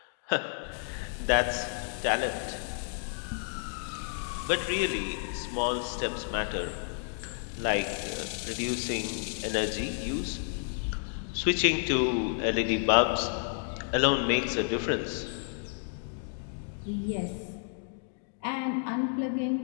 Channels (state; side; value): silent; right; 57 dB below the other